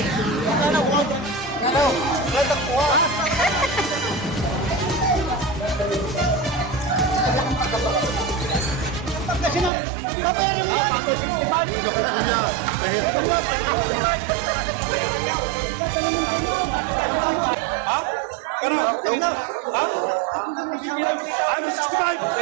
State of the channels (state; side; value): drops out; left; at 9.7 s